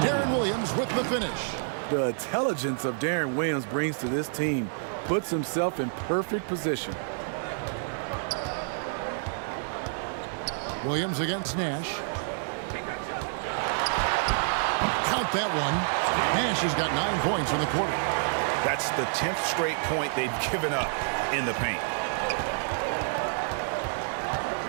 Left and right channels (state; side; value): silent; left; 56 dB below the other